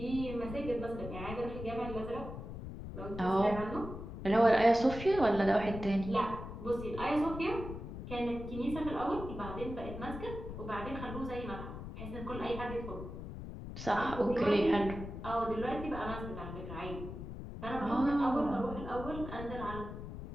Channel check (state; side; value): noise; left; rumble, 9 dB below the sound